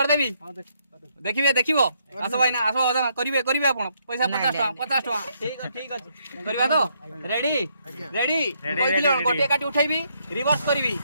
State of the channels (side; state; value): both; inverted; correlation -0.73